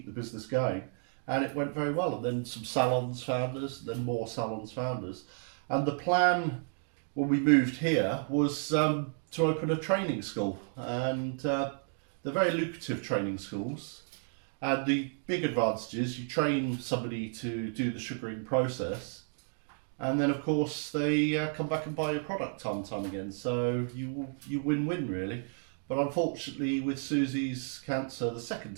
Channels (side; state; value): left; silent; 56 dB below the other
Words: the business going. And it went very well, and then some salons found us, then more salons found us. And the plan when we moved here was to open a training school, and they're very lucrative training schools. And the big advantage is you train somebody to do the sugaring process, and then of course they come back and buy your product time and time again. So you win-win really. But unfortunately with Susie's cancer the